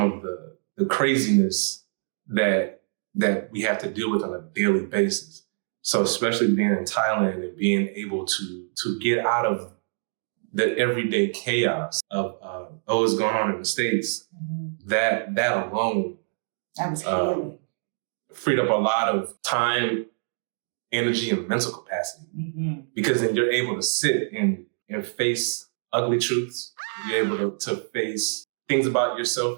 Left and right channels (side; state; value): left; silent; 61 dB below the other